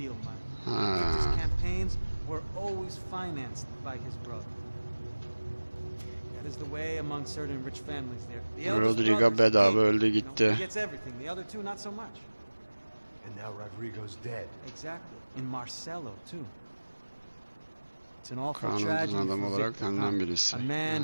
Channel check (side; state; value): both; inverted; correlation -1.00